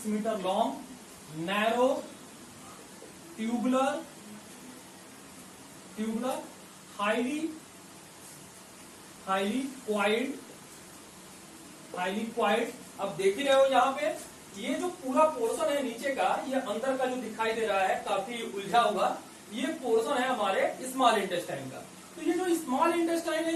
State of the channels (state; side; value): identical; both; correlation 1.00